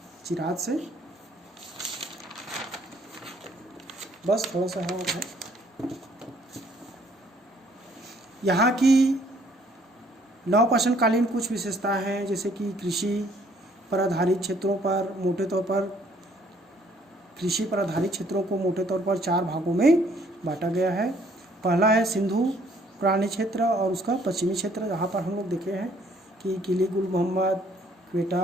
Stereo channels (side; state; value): both; normal; correlation 0.63